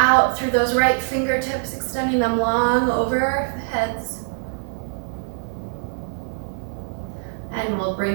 through those right fingertips, extending them long over our heads. And we'll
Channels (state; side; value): silent; left; digital silence